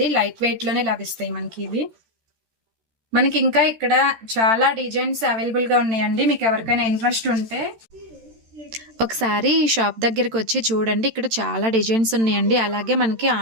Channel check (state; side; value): late; left; 13 ms